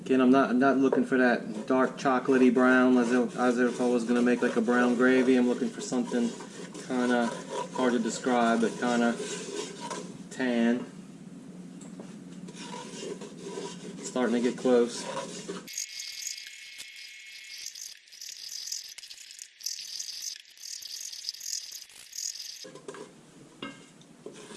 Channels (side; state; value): both; identical; correlation 1.00